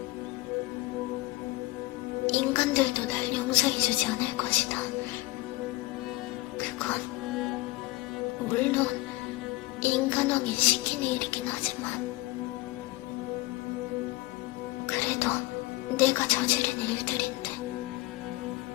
인간들도 날 용서해주지 않을 것이다. 그건 물론 인간왕이 시키는 일이긴 하지만 그래도 내가 저지른 일들인데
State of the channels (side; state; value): right; quieter; 20.3 dB